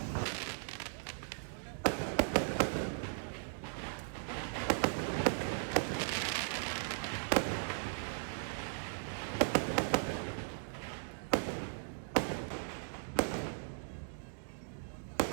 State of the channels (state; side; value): silent; left; digital silence